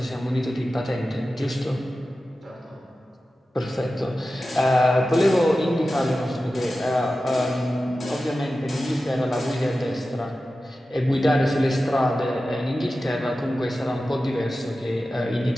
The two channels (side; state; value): both; normal; correlation 0.94